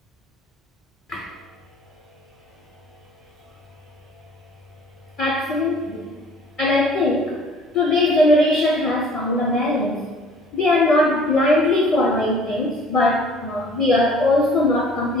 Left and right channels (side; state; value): both; normal; correlation 0.52